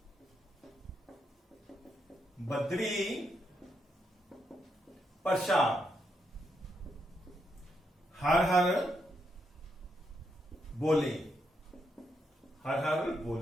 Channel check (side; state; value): both; normal; correlation 0.80